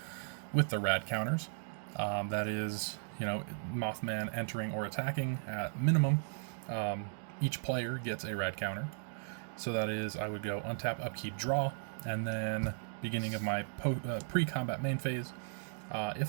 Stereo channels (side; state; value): left; silent; digital silence